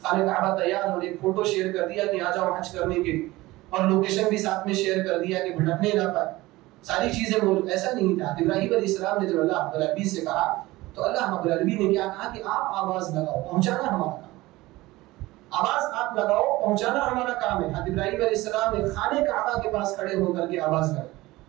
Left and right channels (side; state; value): left; quieter; 19.2 dB